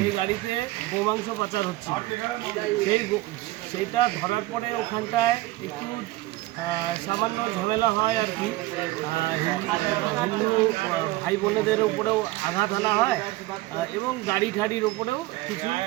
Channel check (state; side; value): quieter; left; 18.6 dB